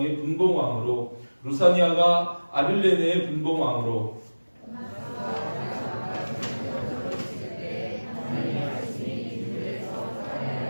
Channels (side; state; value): both; inverted; correlation -1.00